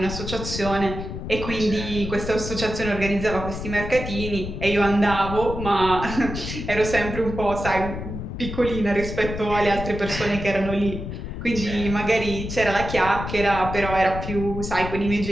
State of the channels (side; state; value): left; noise; rumble, 7 dB below the sound